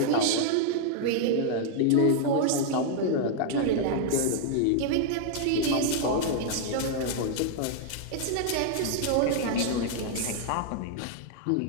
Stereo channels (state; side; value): different; both; correlation -0.01